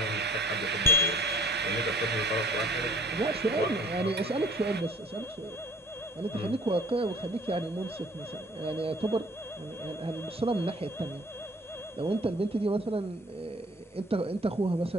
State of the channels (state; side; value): normal; both; correlation 0.54